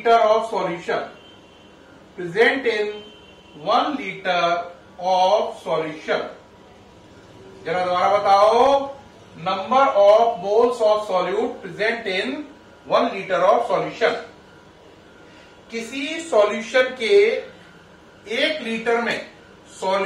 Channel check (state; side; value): identical; both; correlation 1.00